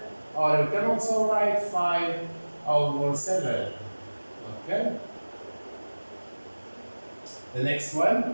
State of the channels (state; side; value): inverted; both; correlation -1.00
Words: Or we can also write 5 over 7. Okay? The next